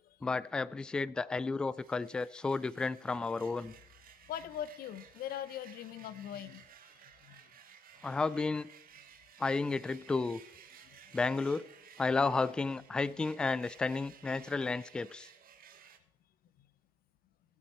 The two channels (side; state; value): right; quieter; 3.7 dB